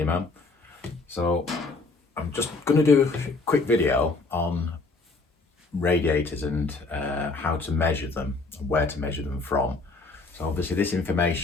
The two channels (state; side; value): quieter; right; 3.8 dB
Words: So I'm just going to do a quick video on radiators and how to measure them and where to measure them from. So obviously this